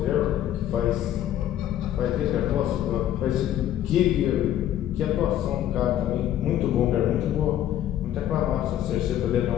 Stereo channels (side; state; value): right; quieter; 11.7 dB